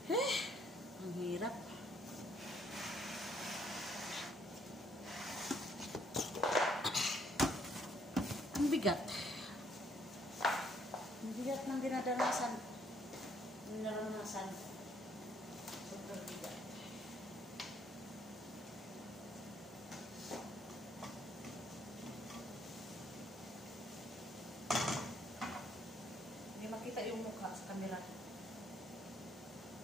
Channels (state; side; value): normal; both; correlation 0.67